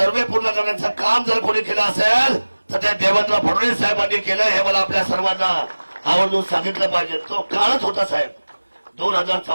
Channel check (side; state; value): both; inverted; correlation -1.00